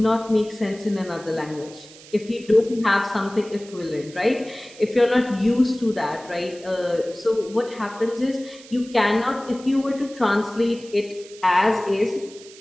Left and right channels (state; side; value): noise; right; hiss, 20 dB below the sound